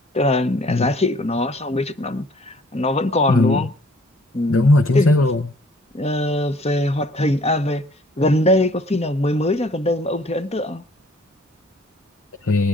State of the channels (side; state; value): both; normal; correlation 0.57